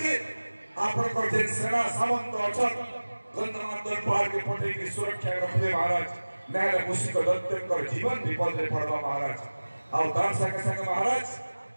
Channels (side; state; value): both; inverted; correlation -1.00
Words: आपणकर जे सेना सामंत अछन गंधमार्दन पहाड़ के पटे की सुरक्षा रखले महाराज नाले मुसिक दत्तकर जीवन विपद रे पड़वा महाराज आउ तार संगे संगे महाराज